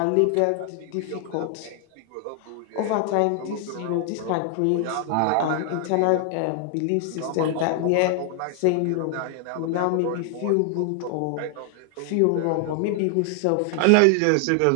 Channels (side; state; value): both; different; correlation 0.00